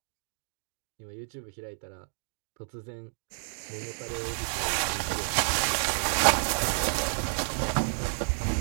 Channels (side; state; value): left; silent; digital silence